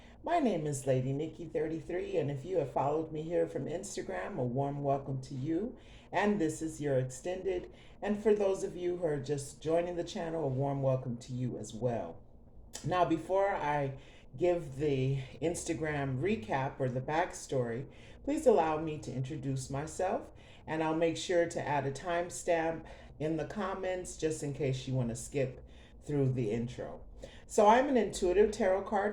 My name is Lady Nikki 33, and if you have followed me here from Instagram, a warm welcome to you. And this is your extended. And for those of you who are just joining the channel, a warm welcome to you as well. Now, before I give the Instagram recap or the backstory, please allow me to introduce myself, and I'll make sure to add a timestamp in the comments just in case you want to skip through the intro. So, I'm an intuitive tarot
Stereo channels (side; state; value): both; identical; correlation 1.00